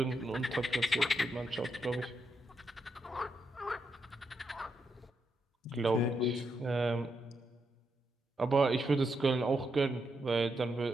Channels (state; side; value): normal; both; correlation 0.82